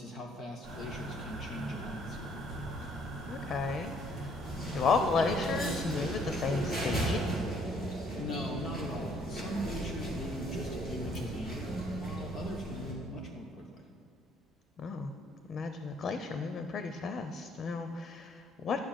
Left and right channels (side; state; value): both; normal; correlation 0.64